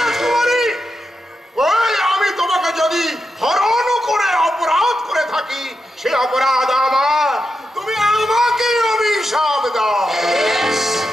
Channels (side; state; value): both; normal; correlation 0.87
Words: ওই আমি তোমাকে যদি হরণ করে অপরাধ করে থাকি, সে অপরাধ আমার, তুমি আমাকে অভিশাপ দাও।